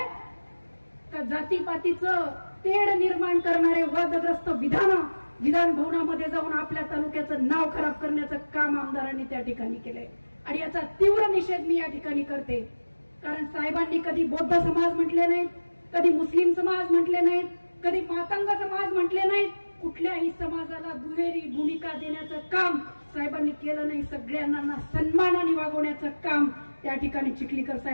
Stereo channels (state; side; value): inverted; both; correlation -1.00